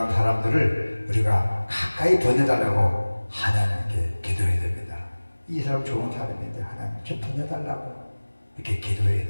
사람들을 우리가 가까이 보내달라고 하나님께 기도해야 됩니다. 이 사람 좋은 사람인데 하나님 좀 보내달라고 이렇게 기도해야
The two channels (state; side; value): inverted; both; correlation -1.00